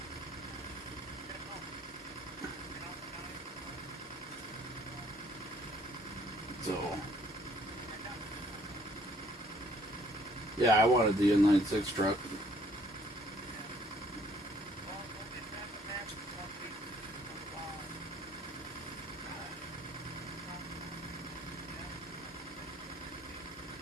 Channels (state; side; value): normal; both; correlation 0.62